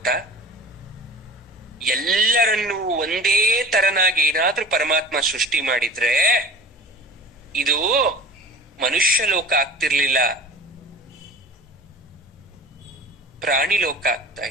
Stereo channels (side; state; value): both; normal; correlation 0.38